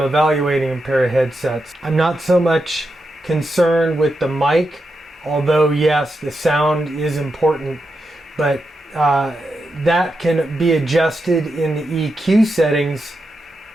a pair of headsets, I'm not so much concerned with the mic, although yes, the sound is important, but that can be adjusted in the EQ settings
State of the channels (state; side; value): normal; both; correlation 0.86